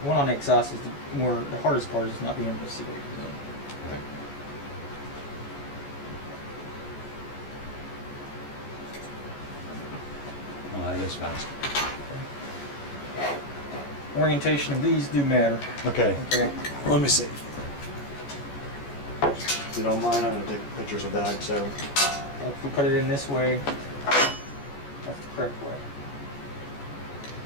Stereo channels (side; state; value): right; late; 14 ms